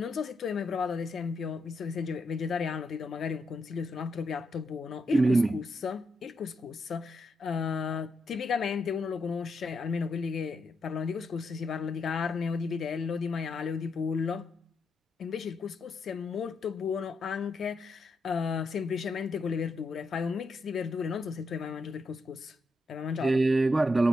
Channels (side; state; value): both; normal; correlation 0.82